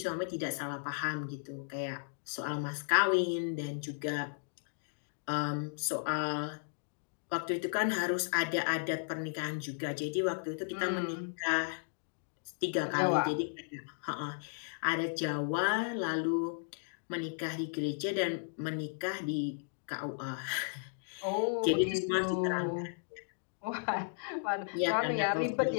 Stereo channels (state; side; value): silent; right; digital silence